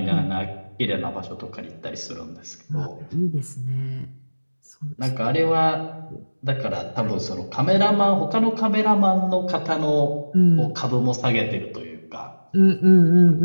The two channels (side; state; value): both; inverted; correlation -1.00